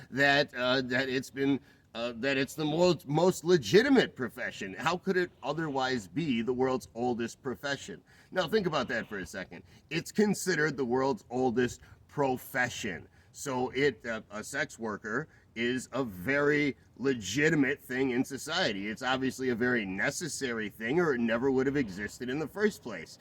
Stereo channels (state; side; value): identical; both; correlation 1.00